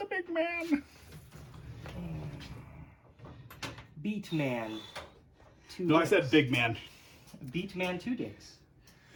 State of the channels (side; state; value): both; identical; correlation 1.00